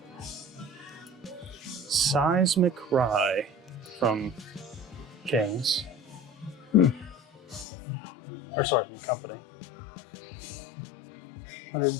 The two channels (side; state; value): right; drops out; at 7.7 s